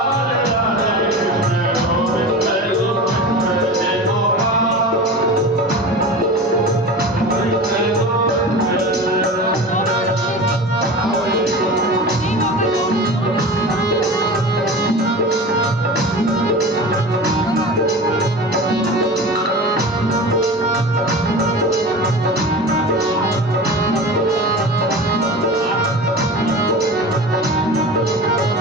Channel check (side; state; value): both; normal; correlation 0.32